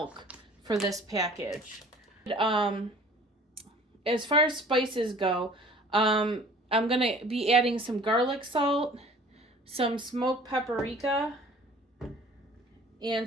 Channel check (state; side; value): normal; both; correlation 0.49